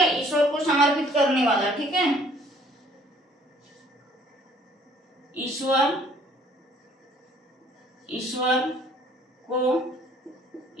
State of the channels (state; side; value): normal; both; correlation 0.58